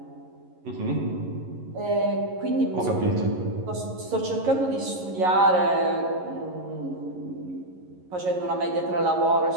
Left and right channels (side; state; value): left; late; 11 ms